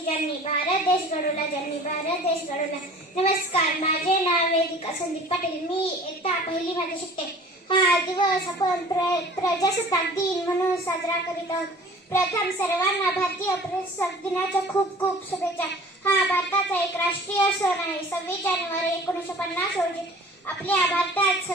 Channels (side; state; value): both; normal; correlation 0.46